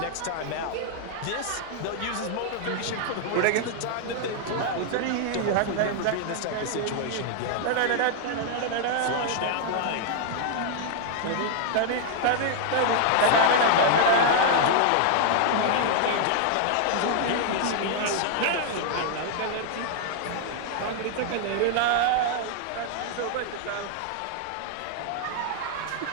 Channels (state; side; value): different; both; correlation 0.00